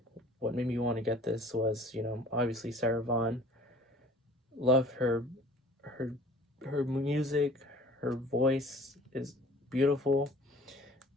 What made me want to get this was, you know, obviously Sarah Vaughan. Love her music. Her voice is beautiful,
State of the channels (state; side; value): normal; both; correlation 0.49